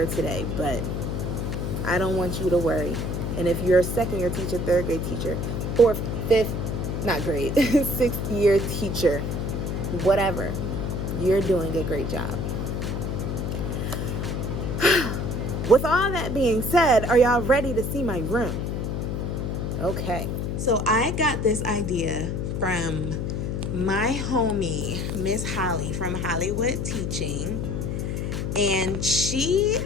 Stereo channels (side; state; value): left; noise; hum, 2 dB below the sound